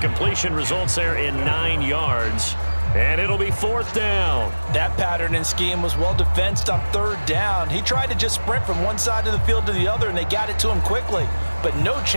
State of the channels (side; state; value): both; inverted; correlation -1.00